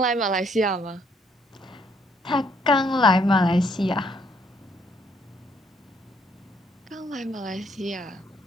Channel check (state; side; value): normal; both; correlation 0.68